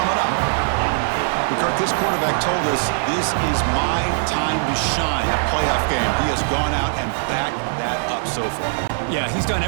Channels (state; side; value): silent; left; digital silence